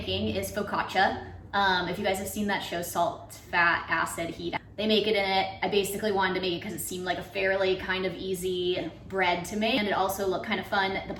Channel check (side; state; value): both; identical; correlation 1.00